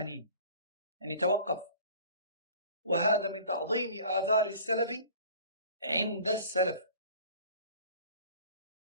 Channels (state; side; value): inverted; both; correlation -0.46